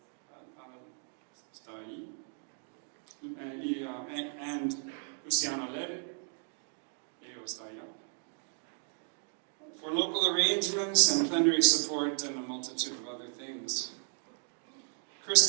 está ahí, and Luciana Lere, está allá, for local arrangements and plenary support and a multitude of other things.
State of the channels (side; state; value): left; silent; 55 dB below the other